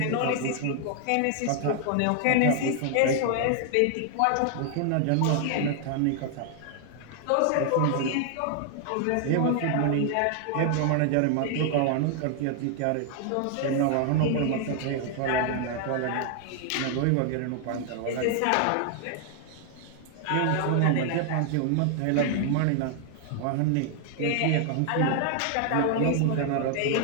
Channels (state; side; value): different; both; correlation 0.00